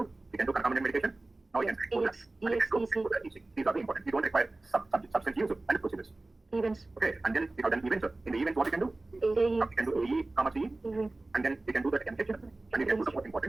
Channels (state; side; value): quieter; left; 3.0 dB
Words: You can do concomitant medication. Now you can do that. These are the important. You don't require substance use and procedures. Events. Okay, and then we have done events. In the events, what you can do? AE. You can do AE, CE, and then you can do the MH, and you can do the most